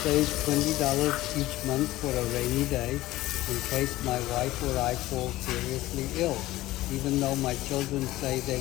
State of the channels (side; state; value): right; quieter; 16.9 dB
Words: $20 each month for a rainy day in case my wife or I fall seriously ill. Even though my children say